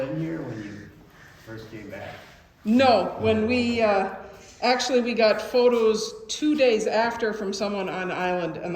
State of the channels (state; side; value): identical; both; correlation 1.00